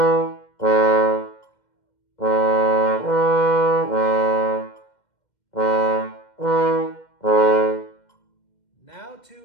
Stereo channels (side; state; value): right; late; 2.1 ms